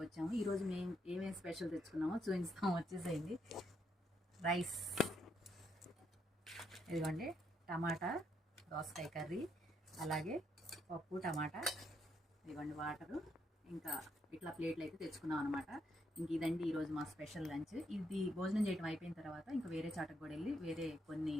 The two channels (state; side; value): normal; both; correlation 0.76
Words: వచ్చాము. ఈరోజు మేము ఏమేమి స్పెషల్ తెచ్చుకున్నామో చూపిస్తాము, వచ్చేసేయండి. రైస్, ఇదిగోండి టమాటా దోసకాయ కర్రీ, అలాగే పప్పు టమాటా, ఇదిగోండి వాటరు, ఇంకా ఇట్లా ప్లేట్లు అయితే తెచ్చుకున్నాం అనమాట. ఇంక ఇదండి ఈరోజు మా స్పెషల్ లంచ్. ఇది భోజనం చేయడం అయిపోయిన తర్వాత ఇంకా వేరే చాటకు కూడా వెళ్ళి వేరే కొన్ని